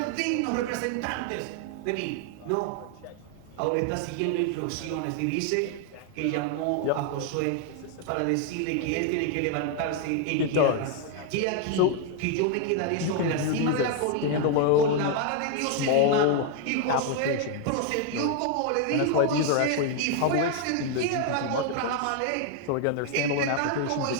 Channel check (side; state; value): both; different; correlation 0.00